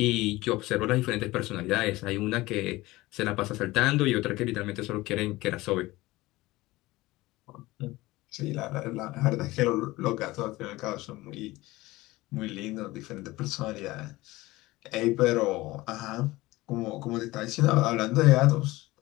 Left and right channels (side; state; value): right; quieter; 19.4 dB